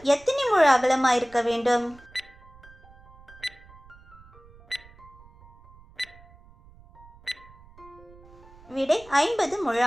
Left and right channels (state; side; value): noise; right; rumble, 24 dB below the sound